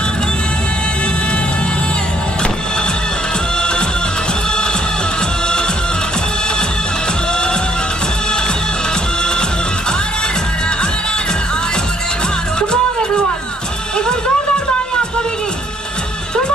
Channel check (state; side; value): normal; both; correlation 0.65